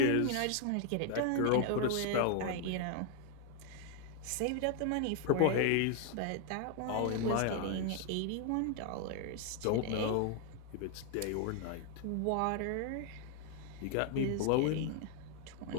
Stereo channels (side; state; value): both; different; correlation 0.00